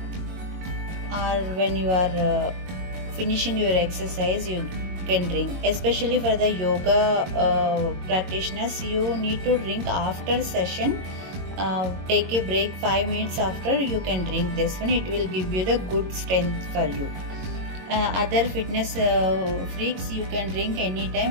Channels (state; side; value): late; left; 22 ms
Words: or when you are finishing your exercise, you can drink. Especially for the yoga practitioners, you need to drink after session. Take a break 5 minutes after, you can drink this one. It will give you the good strength for you. Other fitness freaks, you can drink